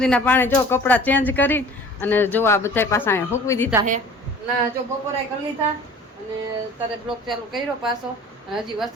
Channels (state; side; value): normal; both; correlation 0.46